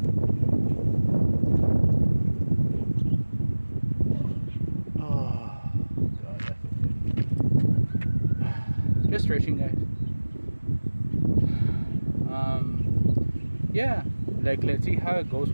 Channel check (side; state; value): both; inverted; correlation -1.00